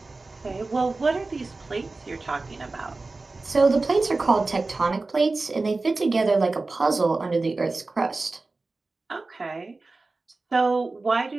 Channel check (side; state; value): left; quieter; 3.5 dB